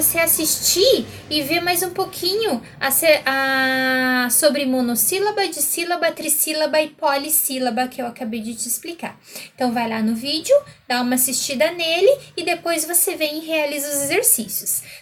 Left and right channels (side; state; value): both; identical; correlation 1.00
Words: assistir e ver mais um pouquinho sobre monossílaba, dissílaba, trissílaba e polissílaba que eu acabei de te explicar. Então, vai lá no vídeo, dá uma assistida nele e depois você vem e realiza os exercícios,